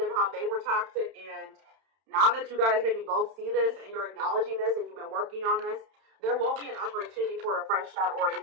how they were toxic, and now that you guys maybe both see this, and you're acknowledging this, and you've been working on this, there will be an opportunity for a fresh start or a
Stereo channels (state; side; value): late; left; 31 ms